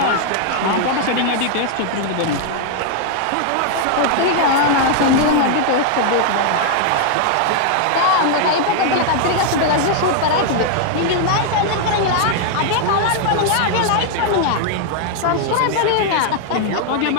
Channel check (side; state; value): both; different; correlation 0.00